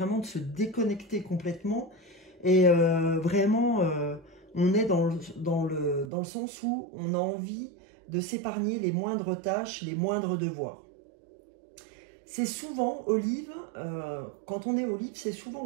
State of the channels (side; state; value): left; drops out; at 6.1 s